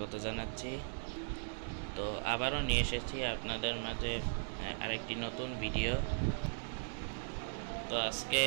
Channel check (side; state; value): left; silent; digital silence